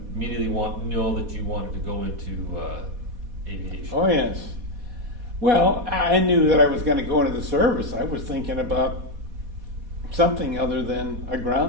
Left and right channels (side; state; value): left; late; 4.1 ms